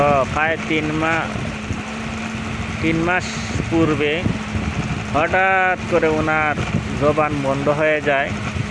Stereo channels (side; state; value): both; identical; correlation 1.00